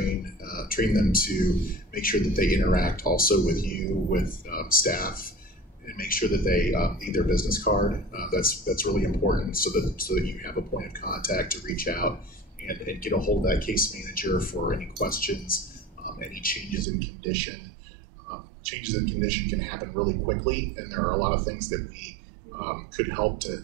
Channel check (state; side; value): drops out; left; at 16.9 s